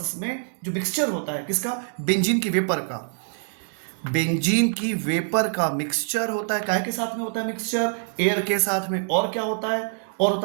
में जो मिक्सचर होता है किसका, बेंजीन की वेपर का, बेंजीन की वेपर का मिक्सचर होता है, काहे के साथ में होता है मिक्सचर, एयर के साथ में, और क्या होता है, और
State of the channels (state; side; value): silent; left; digital silence